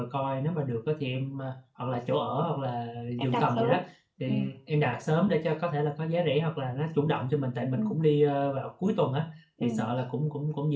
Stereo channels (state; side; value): identical; both; correlation 1.00